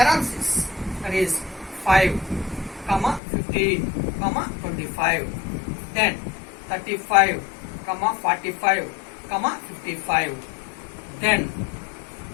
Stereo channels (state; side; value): drops out; right; at 3.2 s